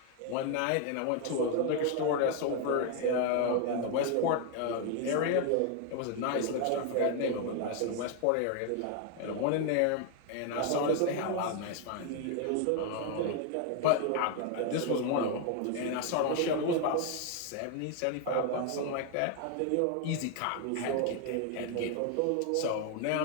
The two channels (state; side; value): different; both; correlation 0.01